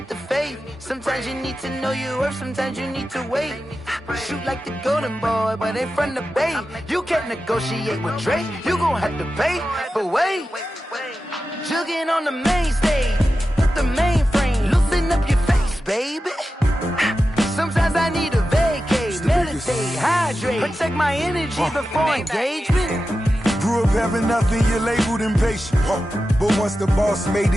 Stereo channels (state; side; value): normal; both; correlation 0.92